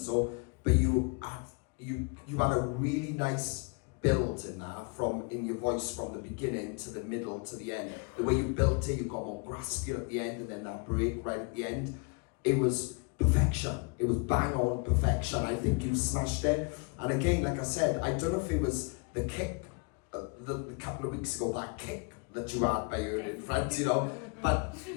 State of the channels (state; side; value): quieter; right; 32.7 dB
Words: but you had a really nice build in that, in your voice from the beginning to the middle to the end. The way you built it, you got more graspier at the end, and then that break right at the end. It was perfection. It was bang on perfection. I think you smashed it. And again, like I said, I don't know if it was the kick, the couple of weeks ago, that kick that you had by your in front, you know, but